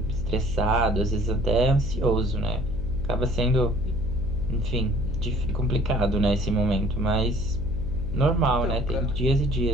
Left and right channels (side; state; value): left; noise; hum, 7 dB below the sound